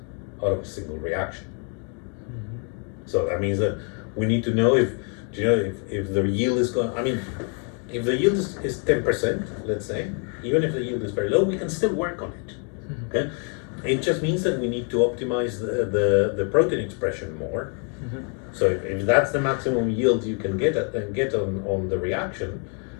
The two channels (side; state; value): right; quieter; 39.9 dB